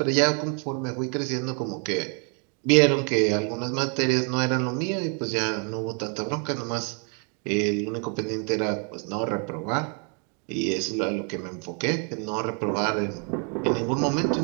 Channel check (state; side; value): quieter; left; 39.1 dB